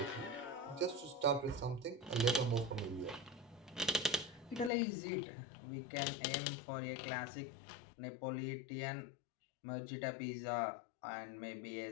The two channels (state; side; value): drops out; right; at 4.7 s